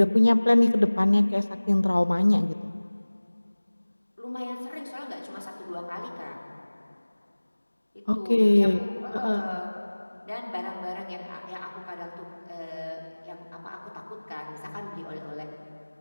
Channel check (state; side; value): inverted; both; correlation -1.00